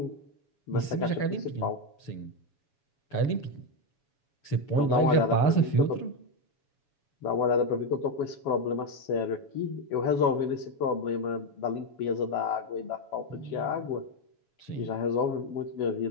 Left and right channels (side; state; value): right; late; 6.8 ms